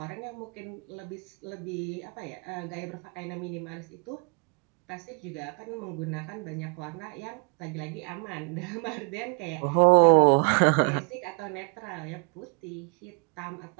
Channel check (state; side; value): quieter; left; 35.4 dB